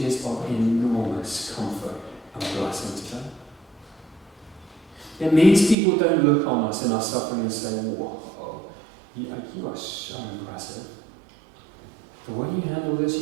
of enormous comfort and blessing to them. It means people don't look on us in our suffering and say, whoa, you are so impressive. The way you handle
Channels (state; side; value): drops out; left; at 5.8 s